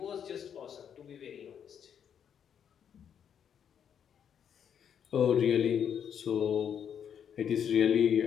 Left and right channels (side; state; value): right; quieter; 8.3 dB